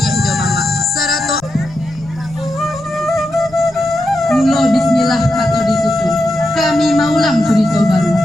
do mama, sarato. Mulo bismillah kato disusun. Kami maulang cerita baru.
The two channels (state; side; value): noise; left; rumble, 24 dB below the sound